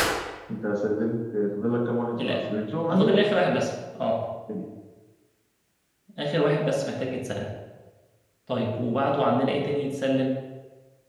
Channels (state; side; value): identical; both; correlation 1.00